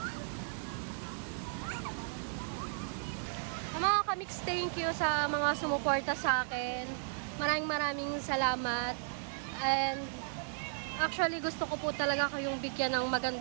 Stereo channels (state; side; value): silent; left; digital silence